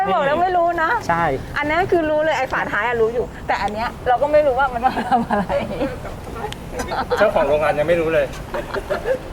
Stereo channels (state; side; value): identical; both; correlation 1.00